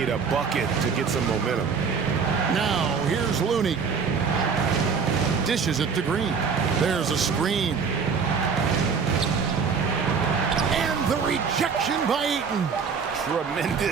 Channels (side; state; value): left; quieter; 5.8 dB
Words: a bucket to get some momentum. Now here's Looney. Dishes it to Green. There's a screen. And the rejection by Ayton.